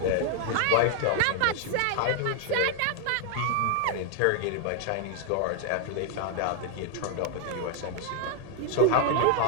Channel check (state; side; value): different; both; correlation 0.00